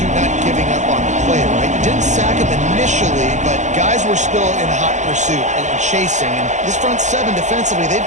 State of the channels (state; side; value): late; left; 0.35 ms